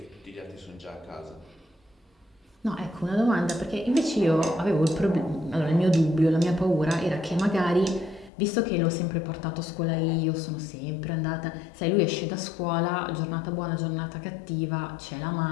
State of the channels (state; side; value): drops out; right; at 8.3 s